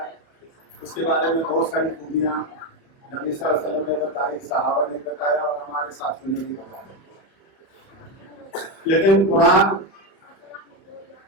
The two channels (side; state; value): right; late; 31 ms